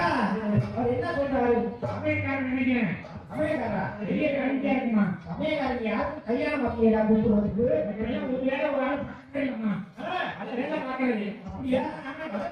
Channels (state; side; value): identical; both; correlation 1.00